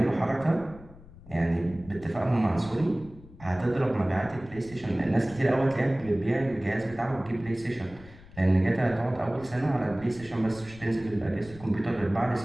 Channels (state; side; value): noise; left; rumble, 19 dB below the sound